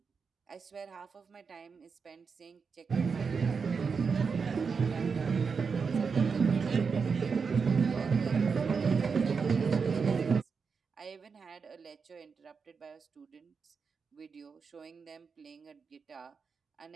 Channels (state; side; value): quieter; left; 5.5 dB